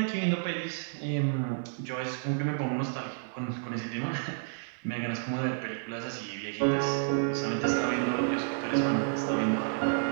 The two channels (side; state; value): left; silent; digital silence